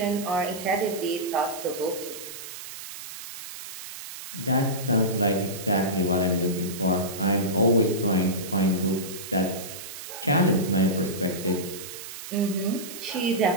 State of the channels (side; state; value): right; noise; hiss, 11 dB below the sound